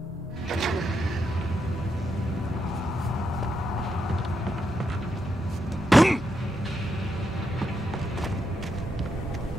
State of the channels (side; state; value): both; normal; correlation 0.82